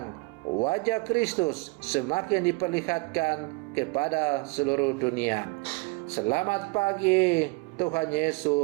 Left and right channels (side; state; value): left; quieter; 27.3 dB